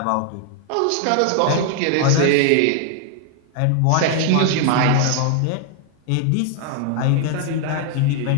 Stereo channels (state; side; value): different; both; correlation 0.00